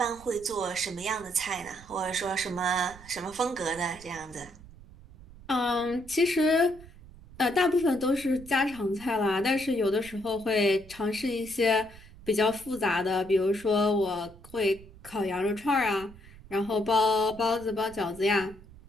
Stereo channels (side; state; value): right; noise; rumble, 20 dB below the sound